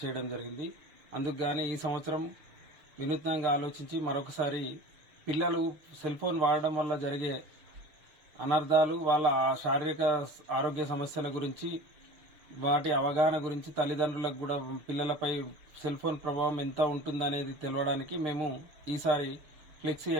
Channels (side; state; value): left; late; 6.6 ms